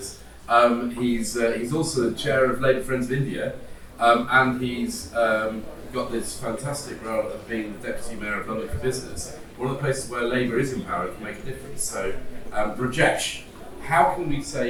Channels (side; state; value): both; identical; correlation 1.00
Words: He's also the chair of Labour Friends of India, and he's got this fantastic role of being the Deputy Mayor of London for Business, one of the places where Labour is empowered to make a difference. So, Rajesh, how can we